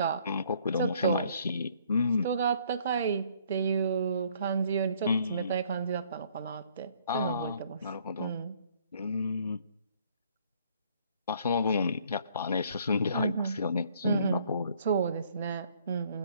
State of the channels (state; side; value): inverted; both; correlation -0.62